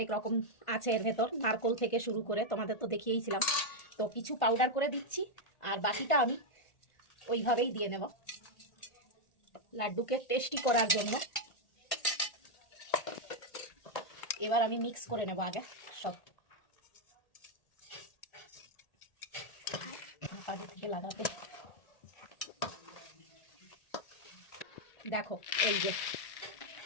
রকম আছে এর ভেতর, নারকোল থেকে শুরু করে, তোমাদের তো দেখিয়েছিলাম। তো কিছু পাউডার করে দিচ্ছি আর বাকিটা আমি ওইভাবেই দিয়ে নেব লাড্ডুকে টেস্টি করার জন্য। এবার আমি মিক্স করে নেব আগে সব থেকে লাগাতে। দেখো এই যে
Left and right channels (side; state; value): right; late; 1.8 ms